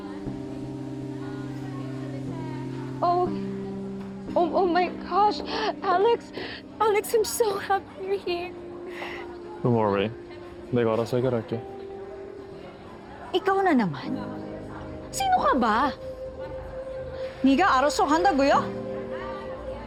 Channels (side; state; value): both; identical; correlation 1.00